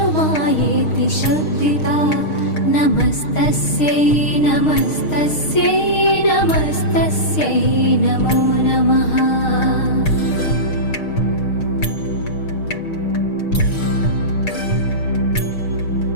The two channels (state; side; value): late; right; 6.5 ms